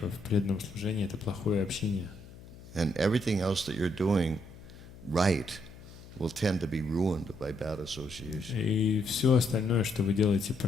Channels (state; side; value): noise; left; hum, 18 dB below the sound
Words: преданном служении — это плохое общение. And everything else that you're doing right will tend to be ruined by bad association. И все остальное, что вы делаете